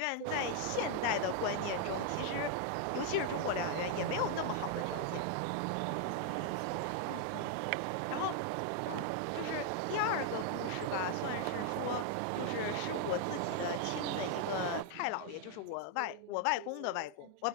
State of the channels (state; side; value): different; both; correlation 0.00